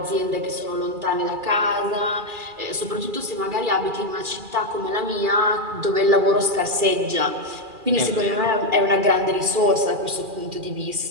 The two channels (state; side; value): late; left; 2.4 ms